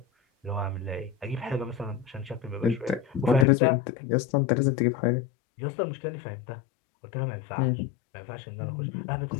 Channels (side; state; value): right; drops out; at 3.5 s